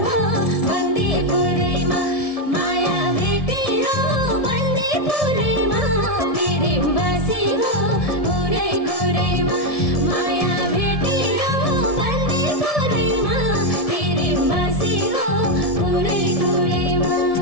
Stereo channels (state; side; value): late; right; 1.7 ms